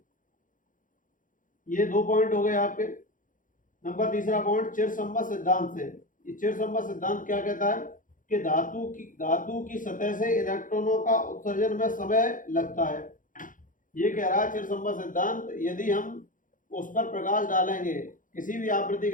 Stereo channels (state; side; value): late; right; 0.39 ms